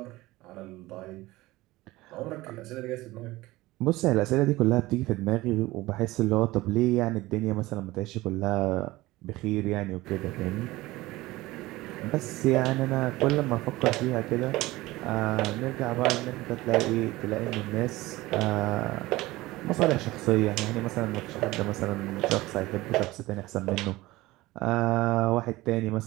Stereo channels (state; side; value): quieter; left; 19.0 dB